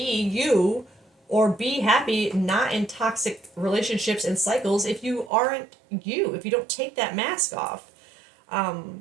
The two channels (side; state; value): left; drops out; at 5.3 s